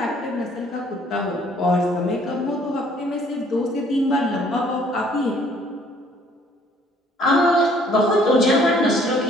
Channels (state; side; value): normal; both; correlation 0.60